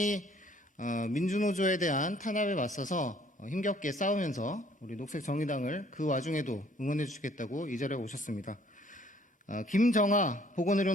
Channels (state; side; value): normal; both; correlation 0.60